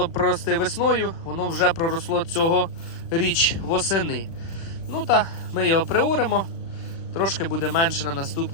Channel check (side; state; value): right; late; 36 ms